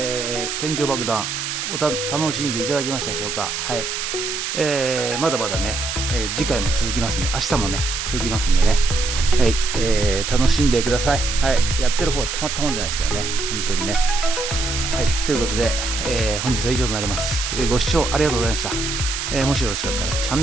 天井爆弾楽しんでいただけましたでしょうか。はい、まだまだね、次回も続きますんで、明日もね続きますんでね、はい、楽しんでください。はい、やってる方はたまったもんじゃないですけどね、本当にね。はい、ということで、本日は以上となります。ご視聴ありがとうございました。もしよろしかったらチャン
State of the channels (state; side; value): noise; right; hiss, 3 dB below the sound